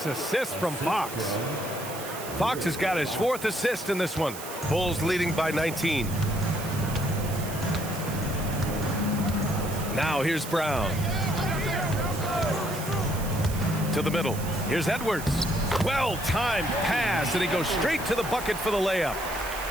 assist from Fox. Fox has got his 4th assist in this one. Bulls leading by 19. Now here's Brown. To the middle. Here's Edwards. Well-timed pass, and he goes straight to the bucket for the layup.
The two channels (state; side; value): noise; right; hiss, 11 dB below the sound